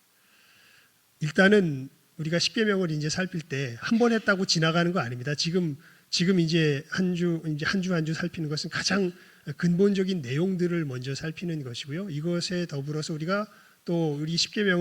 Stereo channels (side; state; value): both; identical; correlation 1.00